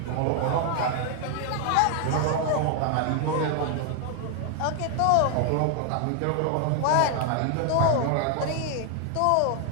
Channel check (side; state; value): both; different; correlation 0.00